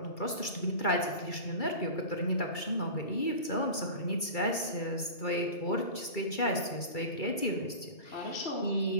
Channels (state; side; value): late; right; 2.3 ms